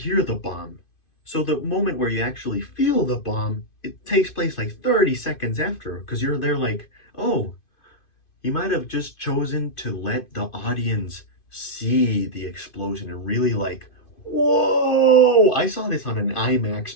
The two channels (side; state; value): right; late; 2.5 ms